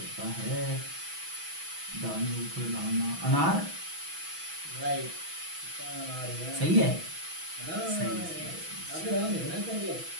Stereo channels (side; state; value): left; late; 6.1 ms